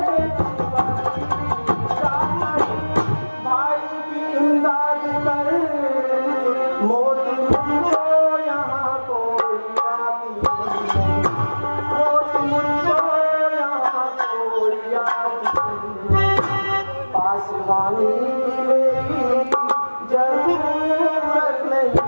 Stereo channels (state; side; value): inverted; both; correlation -1.00